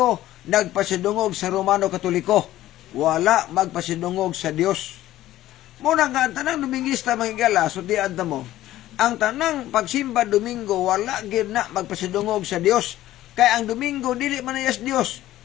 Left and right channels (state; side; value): quieter; right; 14.5 dB